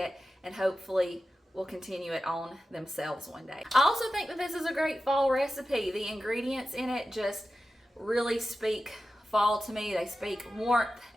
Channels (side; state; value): both; normal; correlation 0.93